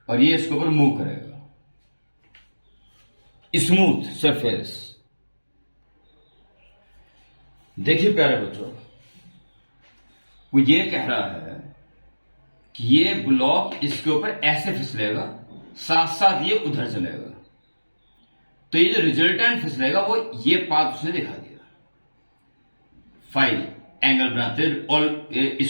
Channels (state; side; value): inverted; both; correlation -1.00